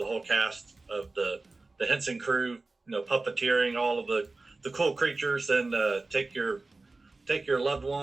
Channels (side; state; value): left; quieter; 3.4 dB